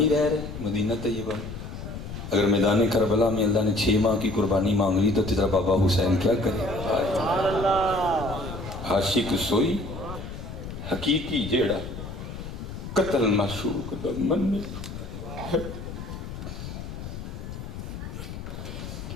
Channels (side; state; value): left; noise; rumble, 9 dB below the sound